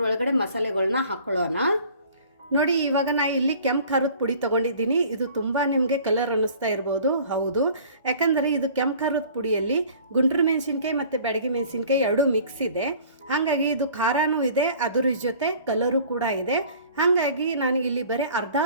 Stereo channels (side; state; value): both; inverted; correlation -0.49